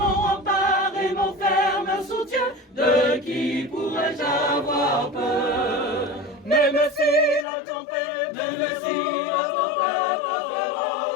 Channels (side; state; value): right; drops out; at 7.5 s